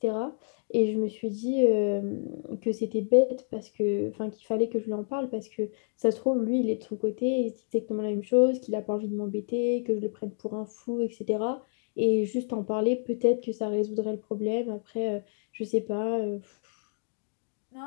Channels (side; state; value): right; silent; digital silence